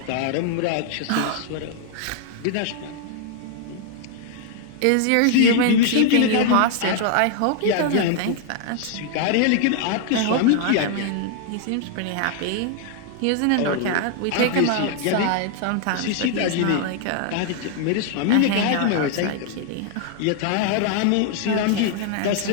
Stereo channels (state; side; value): different; both; correlation 0.00